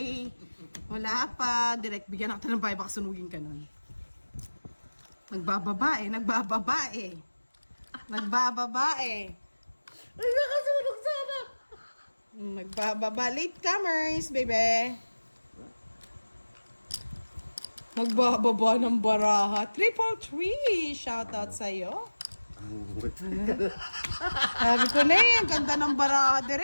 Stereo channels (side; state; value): both; inverted; correlation -1.00